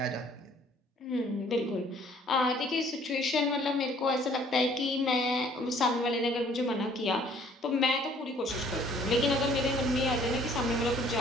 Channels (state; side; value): normal; both; correlation 0.58